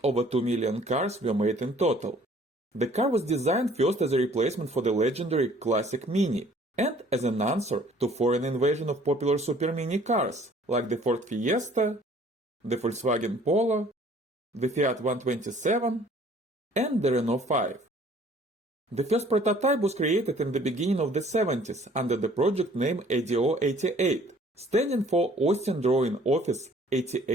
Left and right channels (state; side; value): normal; both; correlation 0.55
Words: over 2 million cars were made in total. The car was designed first as a replacement for the legendary classic Mini, and as an answer to foreign invasion of popular super mini cars, like the Ford Fiesta, the Volkswagen Polo, the Fiat 127, and the Renault 5. The first prototype was created in the beginning of the 70s under the project name ADO 88. Standing for Austin Drawing Office